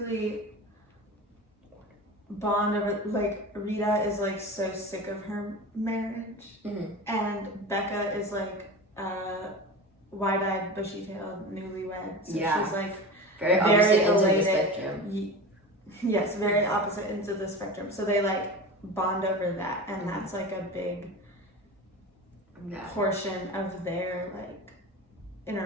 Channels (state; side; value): normal; both; correlation 0.30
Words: bond over, like, Rita is like so sick of her marriage, Mm-hmm. and Becca is like wide-eyed, bushy-tailed, newlywed. So Yeah. she's like Very Very opposite ends of the elated. spectrum. yes, very opposite ends of the spectrum. So they like bond over that, and Mhm. that's like a big Yeah. portion of their like